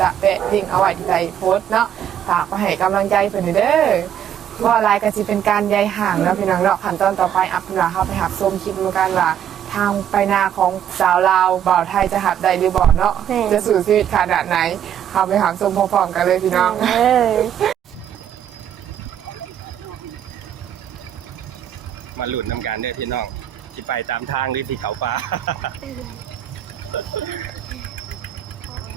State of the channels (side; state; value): left; quieter; 9.8 dB